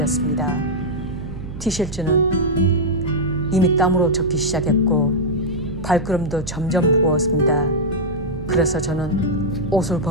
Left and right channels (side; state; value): right; noise; hum, 10 dB below the sound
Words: 티셔츠는 이미 땀으로 젖기 시작했고 발걸음도 점점 무거웠습니다. 그래서 저는 옷을